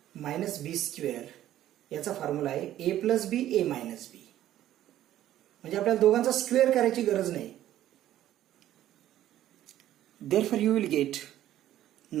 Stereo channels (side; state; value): left; quieter; 12.7 dB